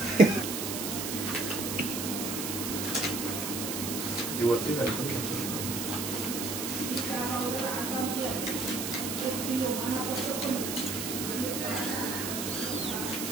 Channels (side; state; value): right; noise; hiss, 3 dB below the sound